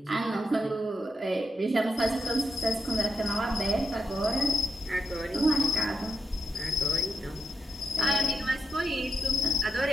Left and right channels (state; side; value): normal; both; correlation 0.83